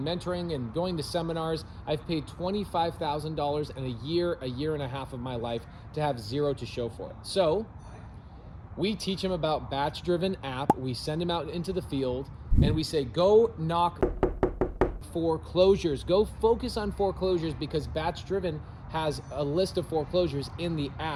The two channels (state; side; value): identical; both; correlation 1.00